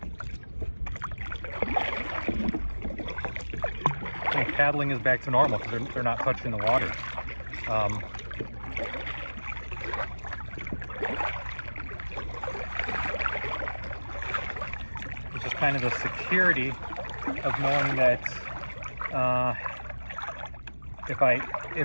paddling is back to normal because they're not touching the water. It's just kind of the security of knowing that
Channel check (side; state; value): both; inverted; correlation -1.00